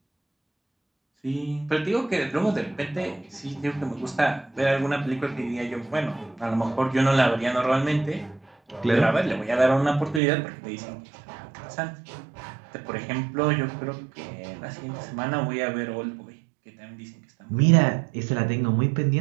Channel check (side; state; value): left; drops out; at 10.2 s